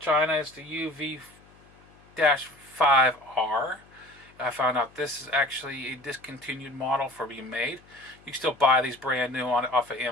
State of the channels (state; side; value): noise; left; hum, 27 dB below the sound